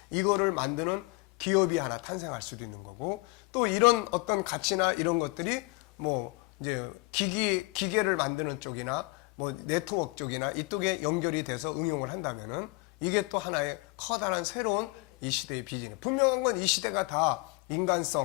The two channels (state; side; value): quieter; right; 25.9 dB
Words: 이거를 만드는 기업이 하나 탄생할 수도 있는 거고, 또 이런 어떤 가치나 이런 것들이 뭐 이제 기계를 만드는 쪽이나 뭐 네트워크 쪽이나 이쪽에 연결이 돼서 응용을 한다면은 이게 또 하나의 커다란 새로운 이 시대의 비즈니스. 분명한 건 이 시대가 다